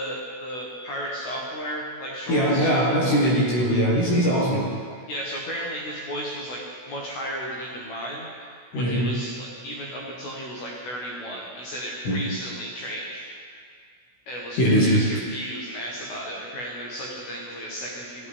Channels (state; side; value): late; right; 16 ms